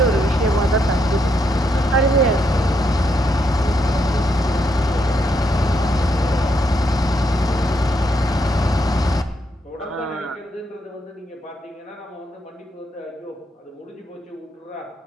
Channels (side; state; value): both; normal; correlation 0.78